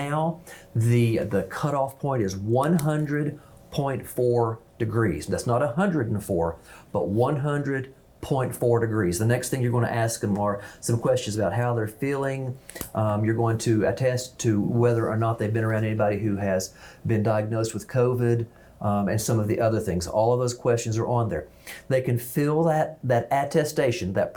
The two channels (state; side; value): identical; both; correlation 1.00